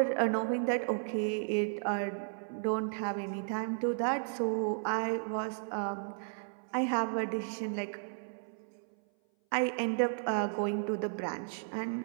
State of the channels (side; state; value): left; silent; 55 dB below the other